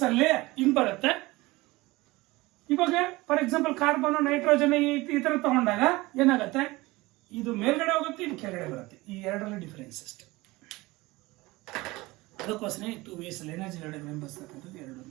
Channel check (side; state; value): left; quieter; 21.0 dB